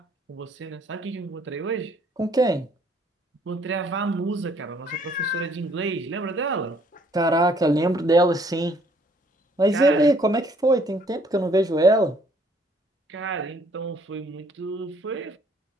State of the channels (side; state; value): both; normal; correlation 0.63